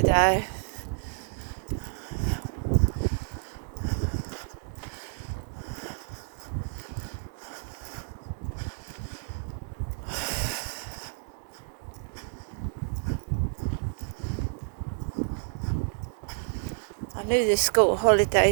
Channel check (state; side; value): silent; left; digital silence